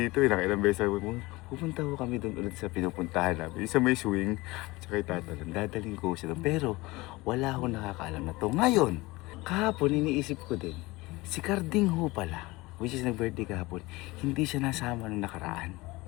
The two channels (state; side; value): quieter; right; 21.7 dB